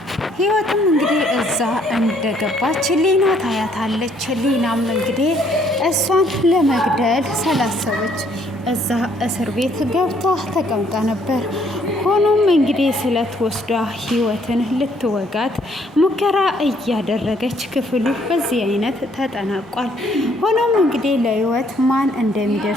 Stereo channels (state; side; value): normal; both; correlation 0.66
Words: ሊና ታያታለች። ሊናም እንግዲህ እሷን ለመግደል ስላሰበች እዛ እስር ቤት ገብታ ተቀምጣ ነበር። ሆኖም እንግዲህ ስለት ወስዳ ህይወትን ልትወጋት ሙከራ እያደረገች ክፍሉ በዚህ አይነት ተጠናቋል። ሆኖም እንግዲህ ለህይወት ማን